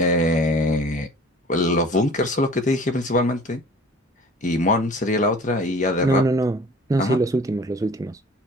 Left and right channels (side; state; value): both; normal; correlation 0.46